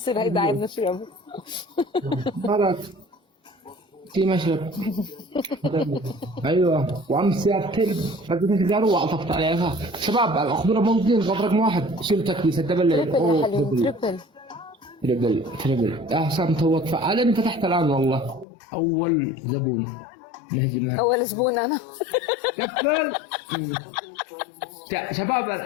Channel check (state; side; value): drops out; right; at 18.4 s